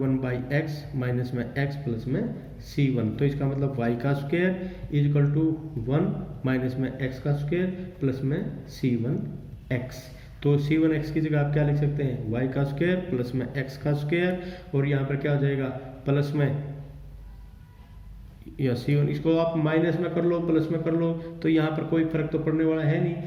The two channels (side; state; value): both; identical; correlation 1.00